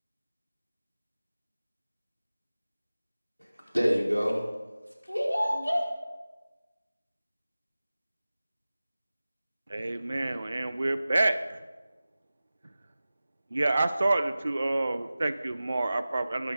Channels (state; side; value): inverted; both; correlation -0.97